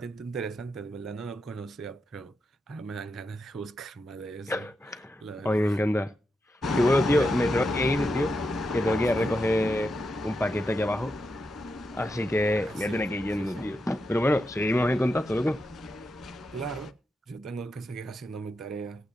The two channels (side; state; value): both; normal; correlation 0.85